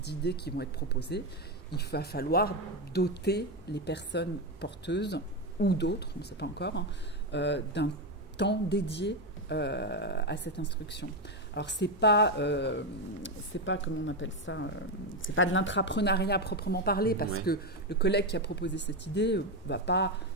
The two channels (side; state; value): both; normal; correlation 0.09